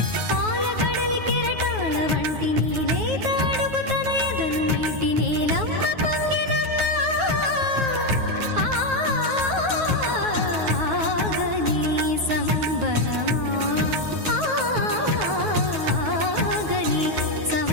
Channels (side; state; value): left; late; 9.4 ms